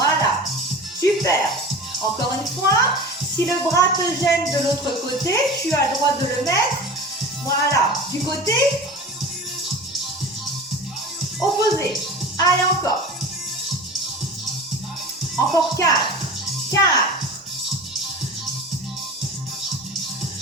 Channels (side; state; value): both; normal; correlation 0.34